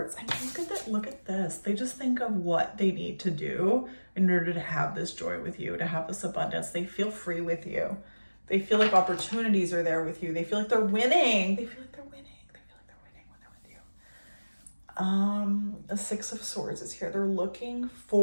I mean, look at this. They just think of what they need to do in order to have this joy with you, to have this abundance. They feel free with you. They feel like opportunities are there with you. They feel like they're winning. They feel like they're winning. They feel like they're winning when they're with you. The 6 of Swords is here. They're looking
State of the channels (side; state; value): both; inverted; correlation -1.00